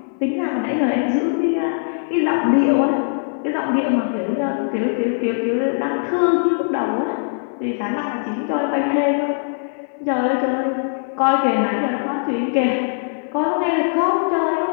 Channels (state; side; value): silent; right; 61 dB below the other